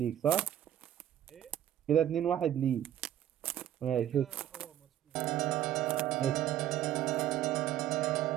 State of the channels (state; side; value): quieter; left; 11.4 dB